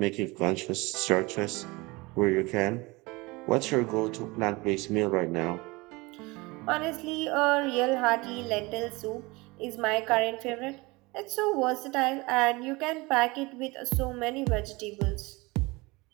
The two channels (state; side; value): quieter; left; 23.8 dB